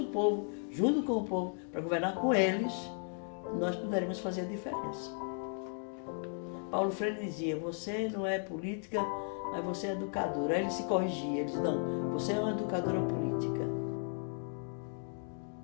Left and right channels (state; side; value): silent; right; 54 dB below the other